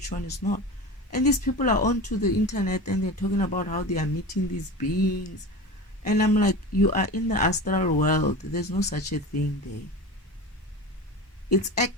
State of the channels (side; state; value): both; normal; correlation 0.30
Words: one is not. And these people are onto the internet and they're talking about how they are meeting these beings. And I'm like, you are in the astral world. There's no such a thing there. It's